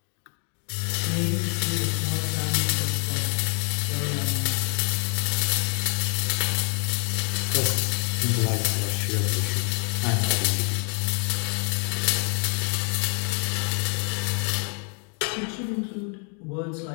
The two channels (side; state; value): right; quieter; 38.7 dB